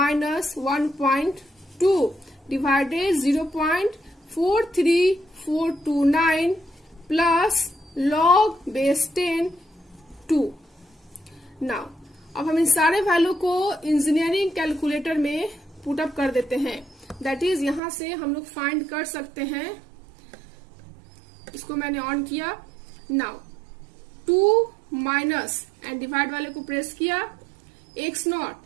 1.2 divided 0.43429 plus log base 10 2। Now अब हम इन सारे वैल्यू को इंजीनियरिंग कैलकुलेटर में पुट अप कर देते हैं, दैट इज यहां से हम लोग फाइंड कर सकते हैं, इसको मैंने ऑन किया। नाउ 2 माइनस एंड डिवाइड वाले को प्रेस किया, x नॉट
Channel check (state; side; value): drops out; left; at 17.8 s